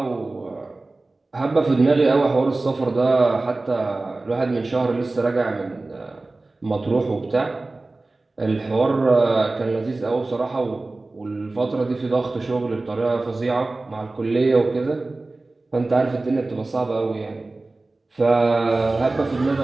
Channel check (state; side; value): quieter; left; 3.2 dB